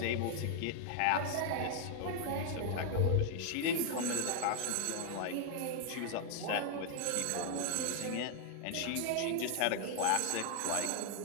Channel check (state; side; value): different; both; correlation 0.00